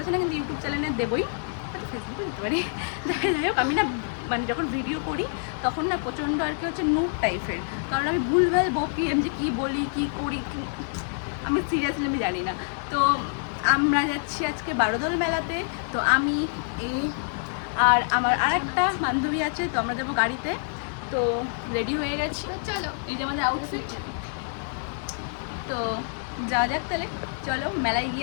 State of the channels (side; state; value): right; silent; digital silence